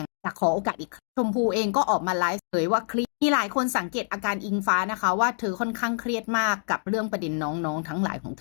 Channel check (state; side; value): silent; right; digital silence